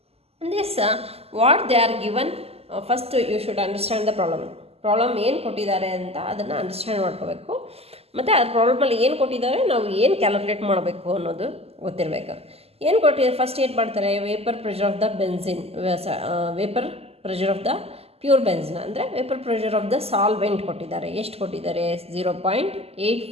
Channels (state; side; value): late; left; 0.29 ms